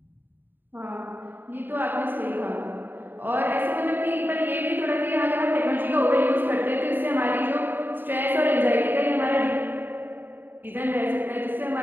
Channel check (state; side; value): late; left; 0.093 ms